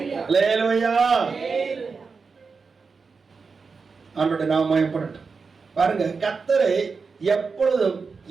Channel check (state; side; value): quieter; left; 4.9 dB